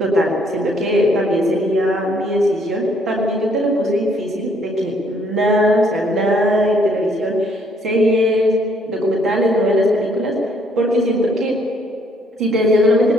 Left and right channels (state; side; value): normal; both; correlation 0.66